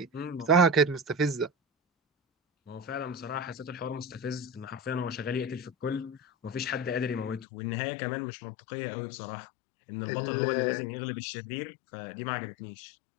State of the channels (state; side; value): drops out; right; at 7.5 s